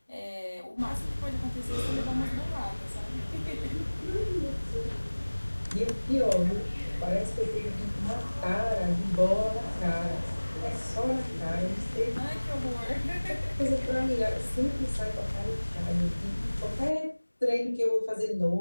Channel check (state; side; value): inverted; both; correlation -1.00